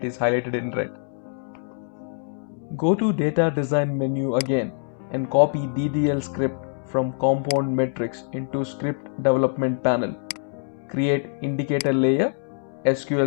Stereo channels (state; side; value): silent; right; 62 dB below the other